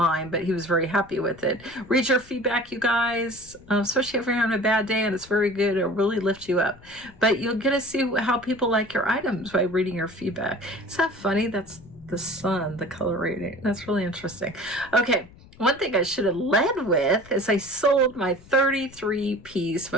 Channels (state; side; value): noise; left; rumble, 23 dB below the sound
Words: but he was very happy with it. Read your feedback, you guys, especially if you're having a bad day, and it's very good. It'll really lift you up. But you'll get to see how people like your items by reading your feedback. Is that funny? That's the sun, the color rating. That's really interesting. Okay. One thing I should have led with is I sold my 33-piece